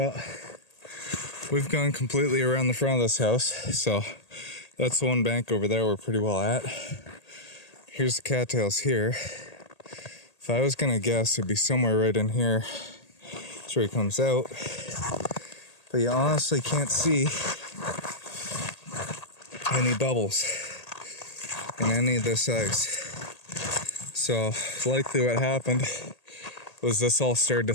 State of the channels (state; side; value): late; right; 1.8 ms